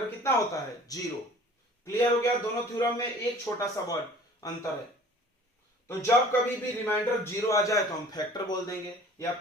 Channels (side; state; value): both; normal; correlation 0.48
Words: कितना होता है? 0। क्लियर हो गया? दोनों थ्योरम में एक छोटा सा वर्ड अंतर है। तो जब कभी भी रिमाइंडर 0 आ जाए तो हम फैक्टर बोल देंगे, या